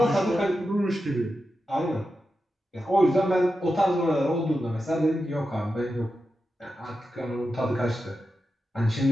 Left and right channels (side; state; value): both; normal; correlation 0.90